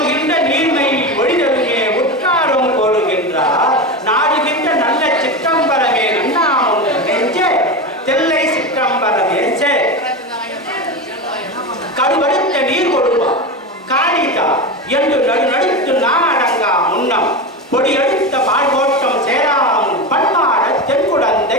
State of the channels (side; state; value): both; normal; correlation 0.20